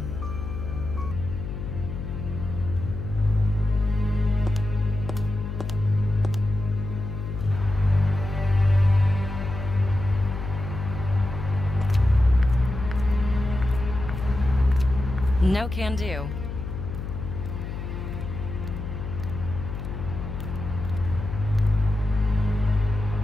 No can do.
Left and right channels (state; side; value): noise; left; hum, 6 dB below the sound